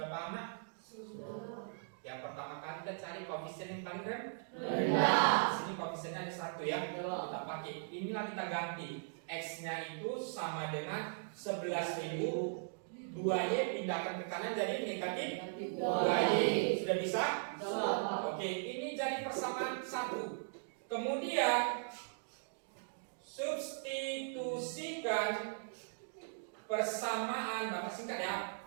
paham nak? Yang pertama kali kita cari koefisien yang paling rendah. Sini koefisiennya ada 1 ya. Kita pakai. Inilah kita ganti. X-nya itu sama dengan 11.000. 2Y pindahkan ke kanan jadi negatif 2Y. Sudah bisa? Oke, ini jadi persamaan 1. Kemudian substitusikan persamaan, Bapak singkat ya.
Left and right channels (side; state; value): left; silent; digital silence